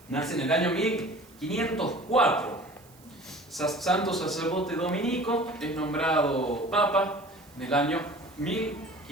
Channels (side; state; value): right; noise; hiss, 27 dB below the sound